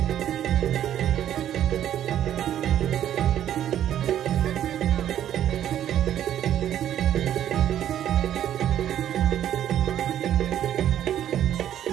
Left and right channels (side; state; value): left; quieter; 11.0 dB